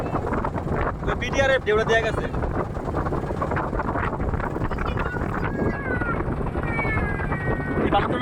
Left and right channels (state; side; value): identical; both; correlation 1.00